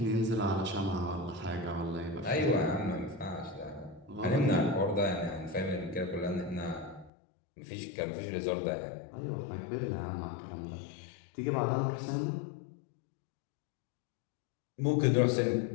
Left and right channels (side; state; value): right; drops out; at 7.1 s